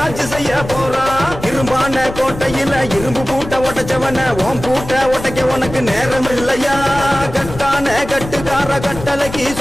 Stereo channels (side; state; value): left; noise; rumble, 11 dB below the sound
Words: ஆட்சி செய்ய போறான். இரும்பான கோட்டையில இரும்பு பூட்ட உடைச்சவன ஓம் பூட்ட உடைக்க உனக்கு நேரம் இல்லையா. கட்டான கட்டுக்கார கட்டளைக்கு